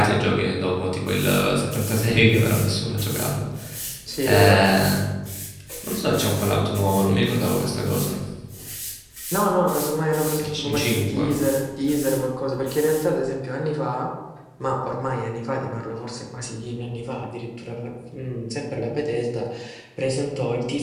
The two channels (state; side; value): identical; both; correlation 1.00